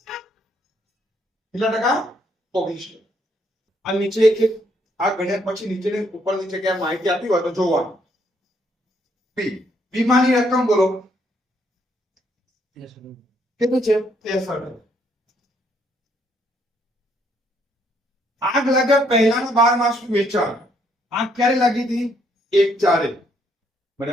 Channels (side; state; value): both; normal; correlation 0.71